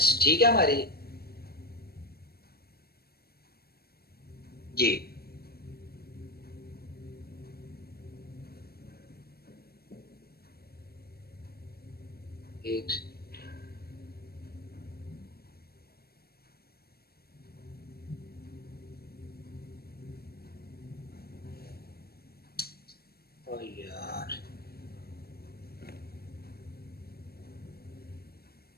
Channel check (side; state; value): right; late; 0.45 ms